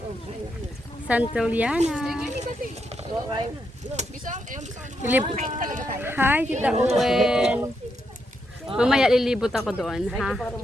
Santillana. Hi, Tita Owen. Mamaya lilibot ako doon, ha?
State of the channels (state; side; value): normal; both; correlation 0.81